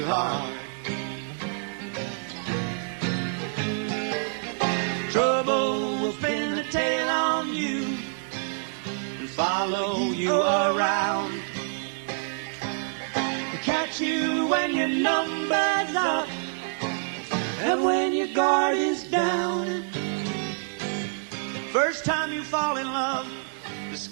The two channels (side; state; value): left; silent; 60 dB below the other